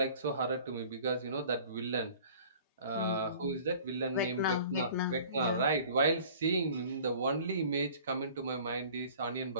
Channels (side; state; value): both; inverted; correlation -0.48